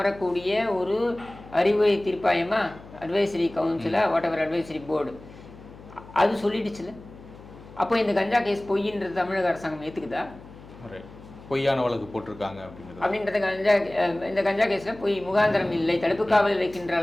ஒரு அறிவுரை தீர்ப்பாயமா, அட்வைசரி கவுன்சிலா, வாட் எவர் அட்வைசரி போர்டு, அது சொல்லிடுச்சுல. அப்போ இந்த கஞ்சா கேஸ் பொய்ன்றது தமிழக அரசாங்கம் ஏற்றுக்குதா? பொய்யான வழக்கு போட்டிருக்காங்க அப்படின்றது இந்த கஞ்சா கேஸில் பொய், முகாந்திரம் இல்லை, தடுப்பு காவலில் வைக்கின்ற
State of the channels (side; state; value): left; noise; hum, 19 dB below the sound